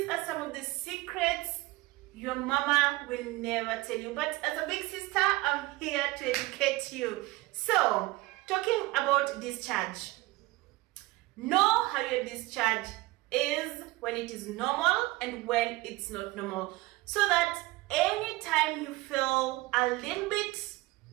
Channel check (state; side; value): quieter; left; 20.4 dB